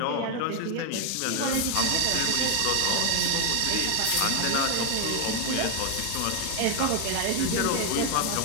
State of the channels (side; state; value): both; different; correlation 0.01